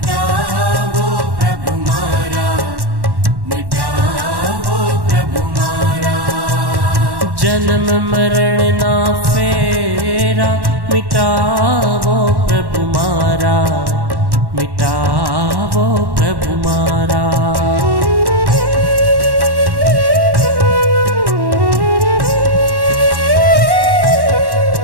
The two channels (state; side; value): late; left; 1.1 ms